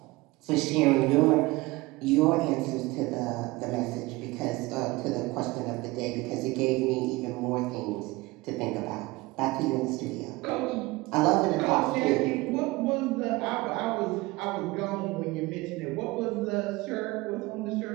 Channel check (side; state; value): left; quieter; 21.6 dB